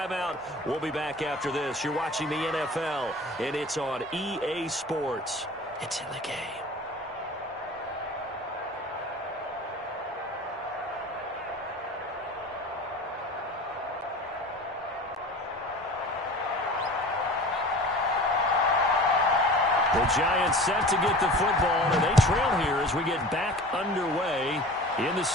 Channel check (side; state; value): both; normal; correlation 0.39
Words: We'll be back after this. You're watching the NFL, and it's on EA Sports. It's in the game. The Giants set to get the football, and they trail here as we get back underway in the